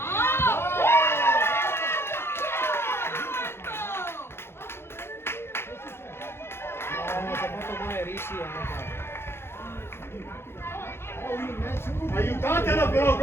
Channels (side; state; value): right; late; 0.12 ms